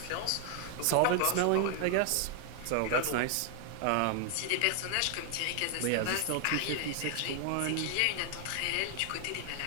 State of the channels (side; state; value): both; different; correlation 0.00